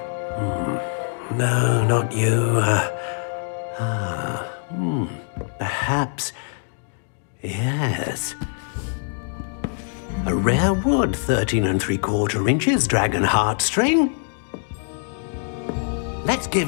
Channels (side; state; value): right; silent; digital silence